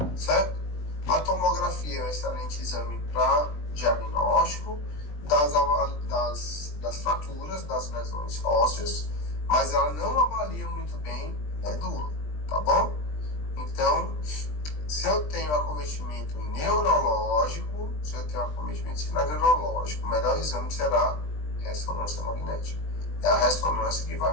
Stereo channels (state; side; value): late; right; 20 ms